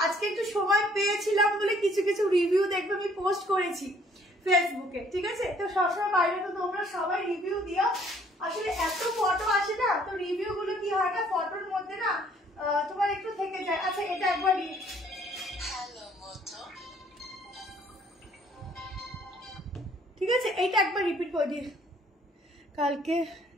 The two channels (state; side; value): normal; both; correlation 0.61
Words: আজকে একটু সময় পেয়েছিলাম বলে কিছু কিছু রিভিউ দেখবে আমি পোস্ট করেছি ফেসবুকে, ঠিক আছে। তো সবসময় বাইরে তো তোমরা সবাই রিভিউ দিও, আসলে এত ফটো আসে না, তো রিভিউ গুলো কি হয় না, ফটোর মধ্যে না তোমার একটু থেকে যায়। আচ্ছা এটা একবার ঠিক আছে, এইটা একবার রিপিট করে দিই। কালকে